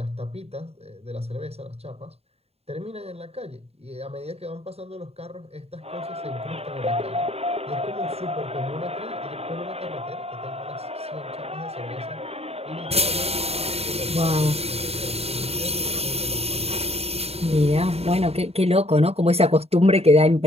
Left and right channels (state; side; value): late; left; 0.30 ms